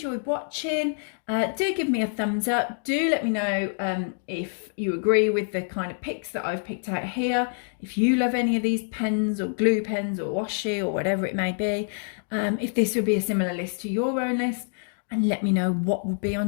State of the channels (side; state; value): right; silent; 61 dB below the other